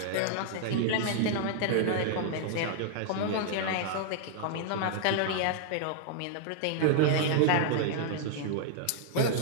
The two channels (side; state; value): both; different; correlation -0.01